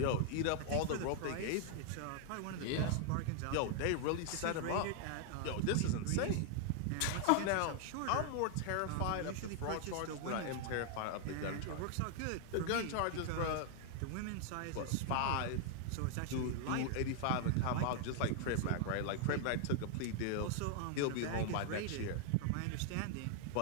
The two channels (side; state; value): both; different; correlation 0.00